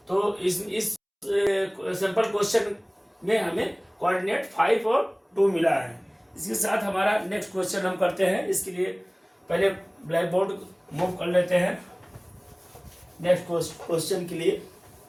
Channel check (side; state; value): both; identical; correlation 1.00